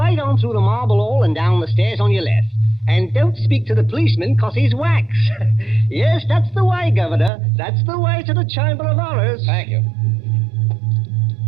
on through the marble hall and down the stairs on your left. And don't speak to the policeman, 'cause he's wax. Yes, that's the way, Governor. That's the way to the Chamber of Horrors. Thank you.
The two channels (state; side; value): drops out; left; at 7.3 s